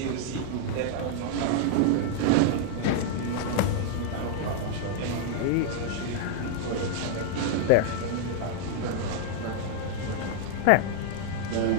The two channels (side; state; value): both; different; correlation -0.01